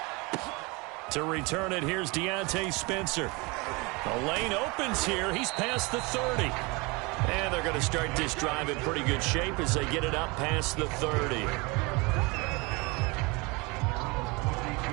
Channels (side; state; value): left; quieter; 26.7 dB